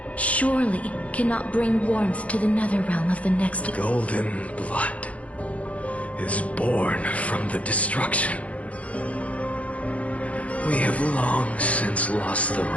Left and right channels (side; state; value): right; late; 0.065 ms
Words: surely cannot bring warmth to the nether realm of the next. Golden blood is born from the destruction. We have long since lost the